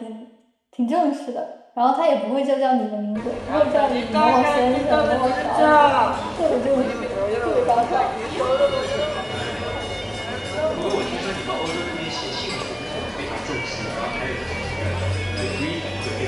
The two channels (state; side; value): identical; both; correlation 1.00